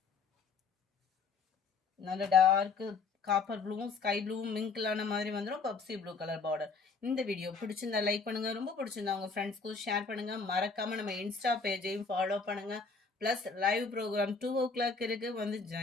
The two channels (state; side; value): quieter; right; 4.7 dB